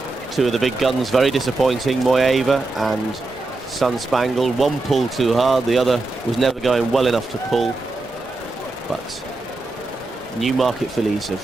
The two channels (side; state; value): left; quieter; 3.2 dB